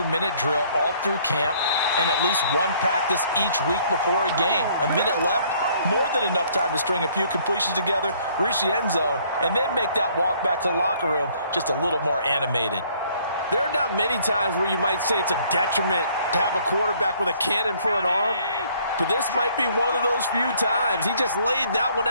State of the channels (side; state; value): both; inverted; correlation -0.61